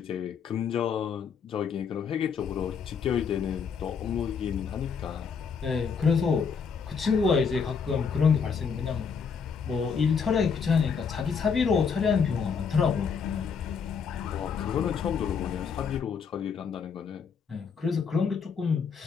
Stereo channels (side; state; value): right; quieter; 6.1 dB